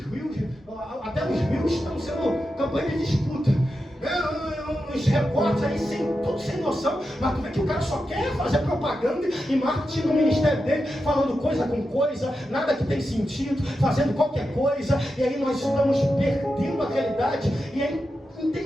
rios, até os rios estão sendo campanha de disputa. Uns repórteres aí tudo sem noção, mas tu vê que o cara só quer fazer propaganda e marketing no ministério dele, falando coisa com coisa, nada que tem sentido, fazendo qualquer coisa, e aí nós estamos perdendo a realidade e o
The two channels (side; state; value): both; normal; correlation 0.89